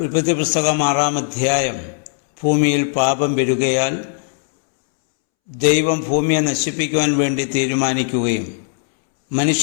ഉൽപ്പത്തി പുസ്തകം 6-ാം അധ്യായം, ഭൂമിയിൽ പാപം പെരുകയാൽ ദൈവം ഭൂമിയെ നശിപ്പിക്കുവാൻ വേണ്ടി തീരുമാനിക്കുകയും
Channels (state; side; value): silent; right; 67 dB below the other